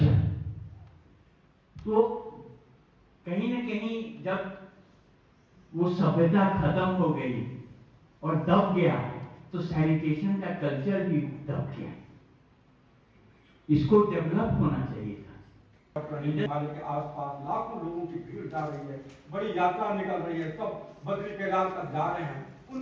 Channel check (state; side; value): identical; both; correlation 1.00